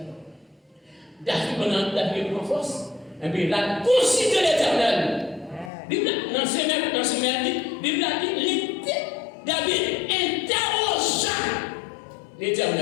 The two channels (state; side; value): drops out; right; at 5.7 s